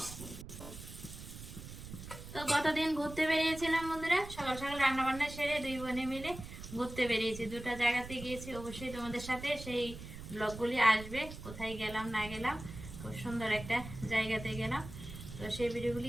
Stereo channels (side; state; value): right; noise; rumble, 12 dB below the sound